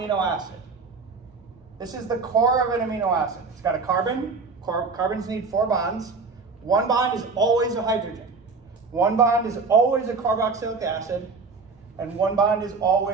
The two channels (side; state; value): left; quieter; 4.4 dB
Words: acid. This is the core of an amino acid. It's got a carbon. Carbons need 4 bonds. One bond is always a hydrogen. One bond is always a carboxylic acid, and one bond is